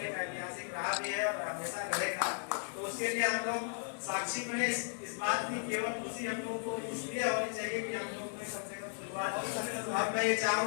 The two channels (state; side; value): silent; right; digital silence